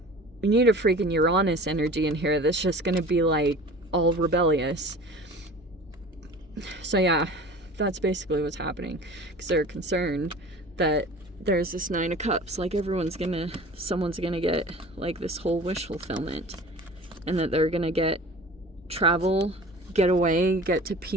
you need a freaking Uranus energy in here that's just going to be like all rebellious. So yeah, that's basically what's happening, because they're concerned that there's this 9 of Cups, like someone's gonna get like this whole wish fulfillment, and that they're gonna get travel, get away, get to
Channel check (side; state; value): both; normal; correlation 0.41